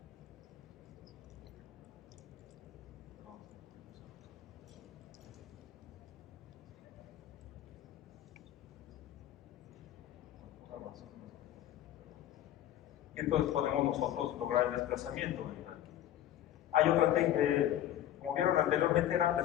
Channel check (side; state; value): right; quieter; 12.2 dB